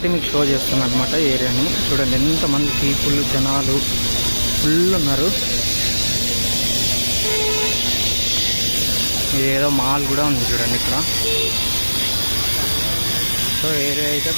మీకు షో చేస్తున్నాను అనమాట ఏరియాని. చూడండి ఎంతమంది పీపుల్, జనాలు ఫుల్ ఉన్నారు. ఏదో మాల్ కూడా ఉంది చూడండి ఇక్కడ. సో ఏరియా అయితే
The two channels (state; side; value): inverted; both; correlation -1.00